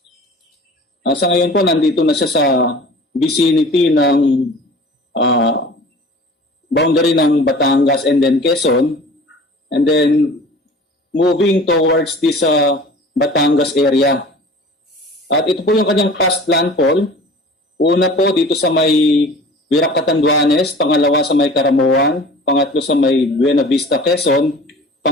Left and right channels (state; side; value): normal; both; correlation 0.43